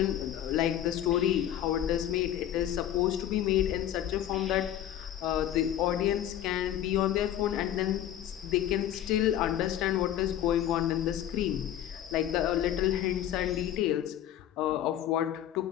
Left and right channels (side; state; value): right; quieter; 11.4 dB